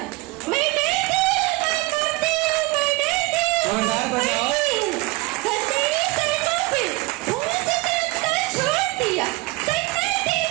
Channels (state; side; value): quieter; left; 23.3 dB